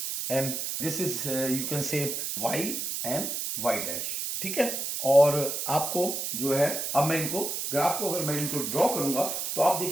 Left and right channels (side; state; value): right; noise; hiss, 3 dB below the sound